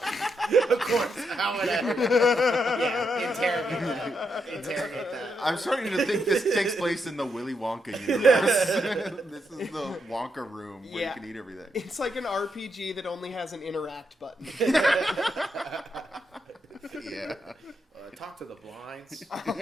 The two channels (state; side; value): normal; both; correlation 0.81